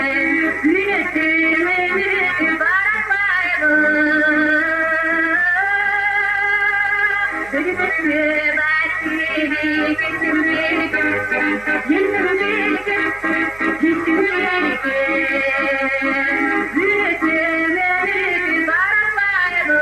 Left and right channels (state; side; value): noise; right; hum, 23 dB below the sound